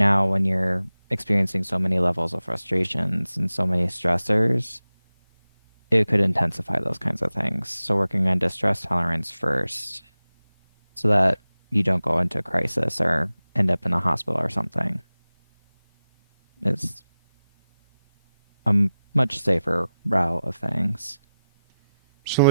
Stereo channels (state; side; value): inverted; both; correlation -0.95